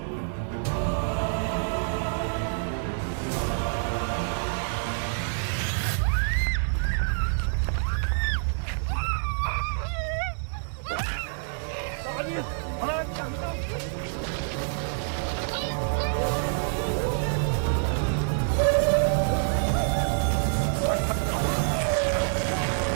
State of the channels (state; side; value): silent; left; 60 dB below the other